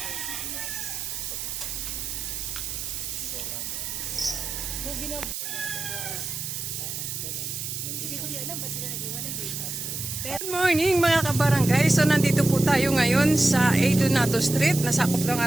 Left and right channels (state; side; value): noise; right; hiss, 5 dB below the sound